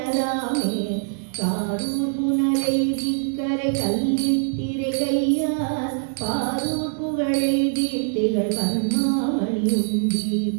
காரூர் புனலைதி கரை கல்லித்திரை கையார், பாரூர் புகழெய்தி திகழ் பன்மாமணி உண்டி,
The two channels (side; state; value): left; silent; digital silence